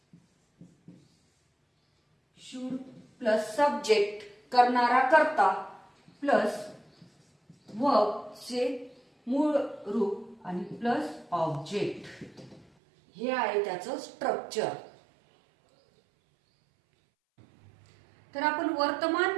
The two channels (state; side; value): drops out; left; at 12.7 s